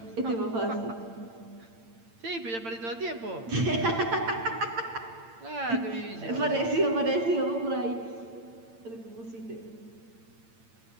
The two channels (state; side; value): late; left; 8.8 ms